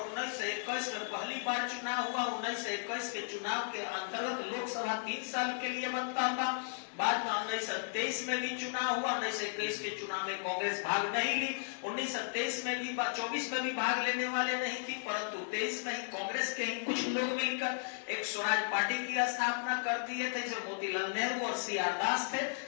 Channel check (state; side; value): silent; right; digital silence